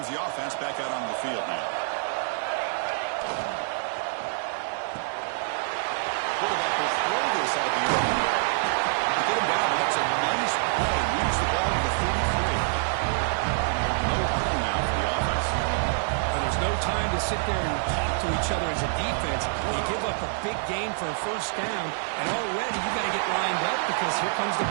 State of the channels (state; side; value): silent; left; digital silence